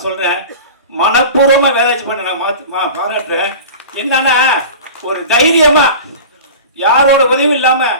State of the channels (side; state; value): both; inverted; correlation -0.35